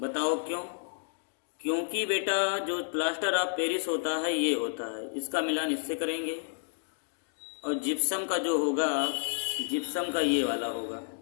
क्यों? क्योंकि बेटा जो प्लास्टर ऑफ पेरिस होता है ये होता है, इसका मिलान इससे करेंगे, और जिप्सम का जो होगा, जिप्सम का ये वाला होगा,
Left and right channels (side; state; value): right; silent; digital silence